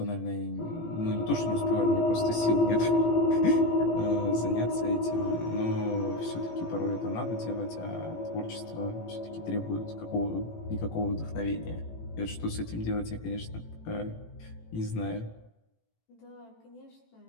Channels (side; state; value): right; late; 18 ms